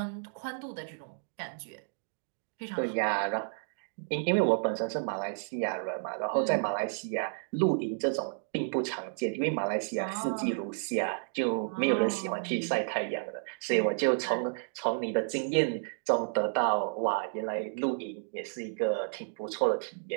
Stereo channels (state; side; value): silent; left; digital silence